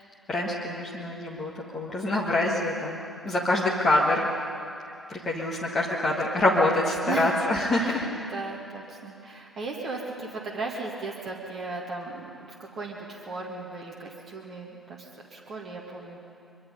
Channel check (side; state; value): both; normal; correlation 0.68